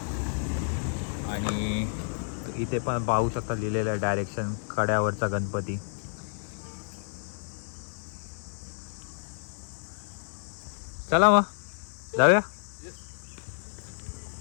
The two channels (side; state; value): right; silent; digital silence